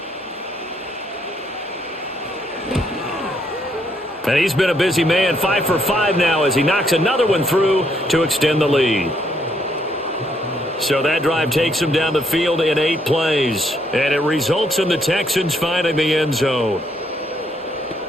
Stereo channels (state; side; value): normal; both; correlation 0.72